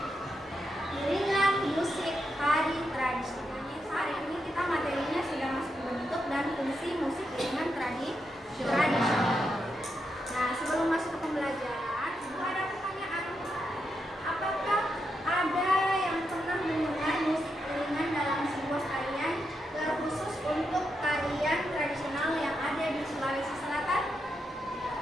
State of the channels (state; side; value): normal; both; correlation 0.84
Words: iringan musik tari tradisional. Hari ini kita materinya sudah masuk bentuk dan fungsi musik iringan tradisional. Nah, sebelum masuk ke pembelajaran, ada pertanyaan. Apakah ada yang pernah mendengar musik iringan dalam sebuah tarian terkhusus untuk tarian tradisional yang ada di Sulawesi Selatan?